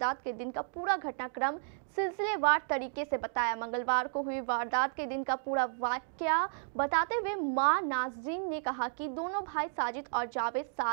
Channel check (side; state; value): left; silent; digital silence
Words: के दिन का पूरा घटनाक्रम सिलसिलेवार तरीके से बताया। मंगलवार को हुई वारदात के दिन का पूरा वाकया बताते हुए मां नाजरीन ने कहा कि दोनों भाई साजिद और जावेद